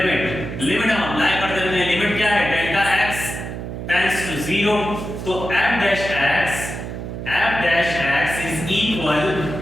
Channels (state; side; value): noise; right; hum, 7 dB below the sound